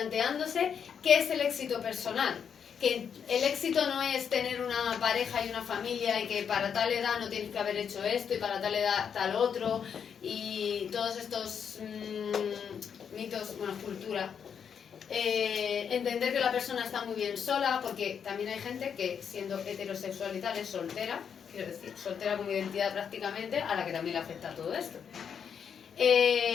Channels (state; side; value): quieter; right; 7.4 dB